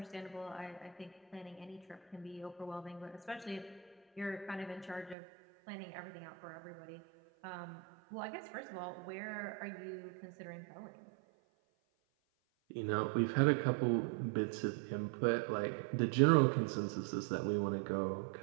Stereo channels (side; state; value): left; drops out; at 5.2 s